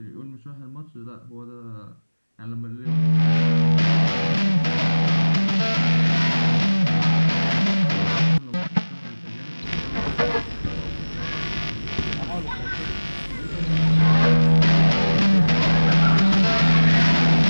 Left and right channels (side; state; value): both; inverted; correlation -1.00